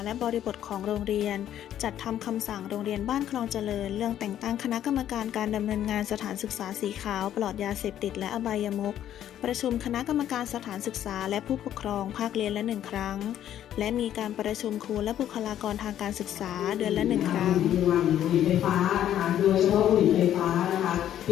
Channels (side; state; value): right; quieter; 11.1 dB